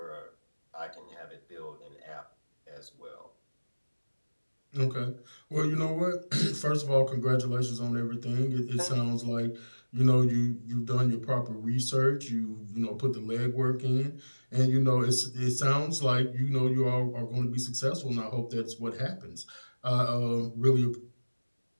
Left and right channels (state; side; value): inverted; both; correlation -1.00